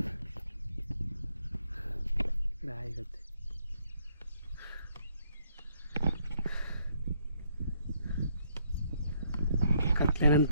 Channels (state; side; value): inverted; both; correlation -0.71